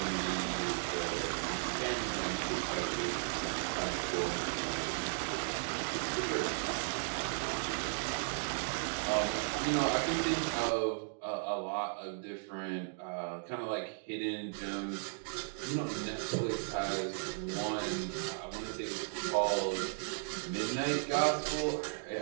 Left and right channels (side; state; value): left; silent; digital silence